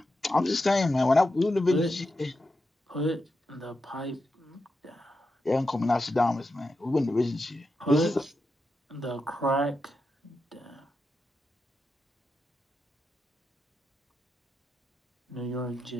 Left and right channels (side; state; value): both; normal; correlation 0.88